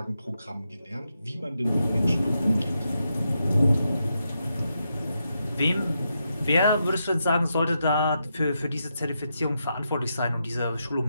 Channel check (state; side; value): inverted; both; correlation -0.84